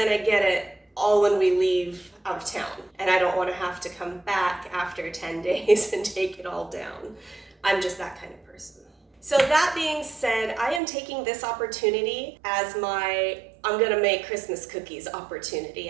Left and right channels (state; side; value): drops out; left; at 10.8 s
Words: get it all when we leave out of town, and I don't want to have to come back after 10 days and take it all down. I'm just that kind of person. So that being said, I am taking this opportunity as my I'm gonna make Christmas cookies